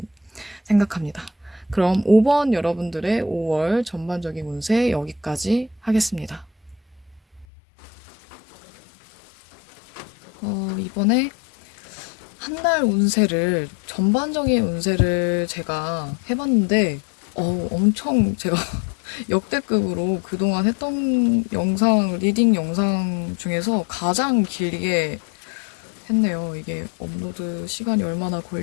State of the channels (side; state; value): right; drops out; at 7.5 s